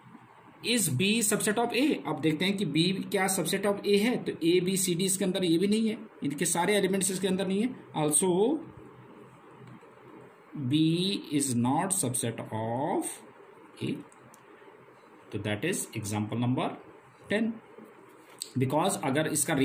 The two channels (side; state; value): both; identical; correlation 1.00